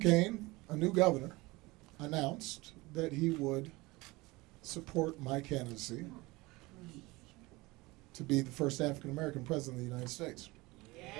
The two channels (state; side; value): quieter; left; 22.1 dB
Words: a new governor, announced that he would support my candidacy to be the first African American president of the United States.